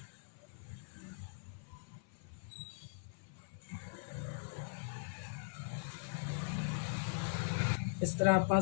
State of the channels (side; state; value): right; silent; 51 dB below the other